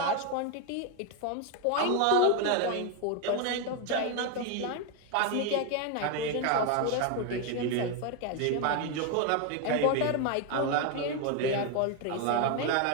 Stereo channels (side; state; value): both; different; correlation 0.01